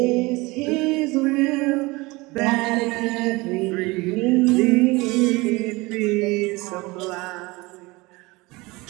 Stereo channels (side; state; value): left; quieter; 23.2 dB